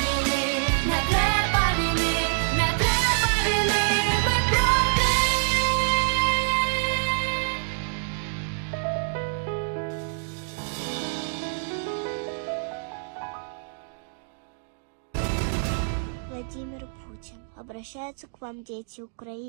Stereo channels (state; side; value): silent; left; digital silence